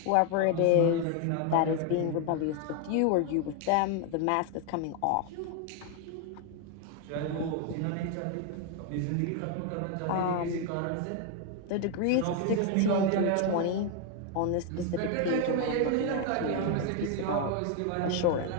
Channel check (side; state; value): both; different; correlation 0.01